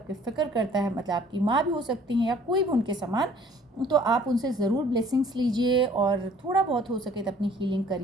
फ़िक्र करता है, मतलब आपकी माँ भी हो सकती हैं या कोई भी उनके समान, तो आप उनसे ज़रूर ब्लेसिंग्स लीजिए और थोड़ा बहुत हो सके तो अपनी हीलिंग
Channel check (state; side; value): normal; both; correlation 0.55